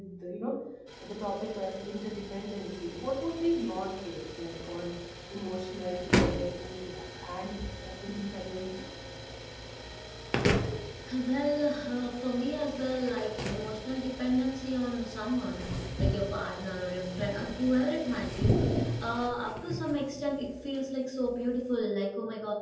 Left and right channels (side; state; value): both; identical; correlation 1.00